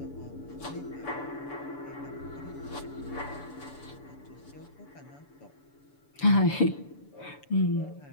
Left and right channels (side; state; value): right; late; 6.9 ms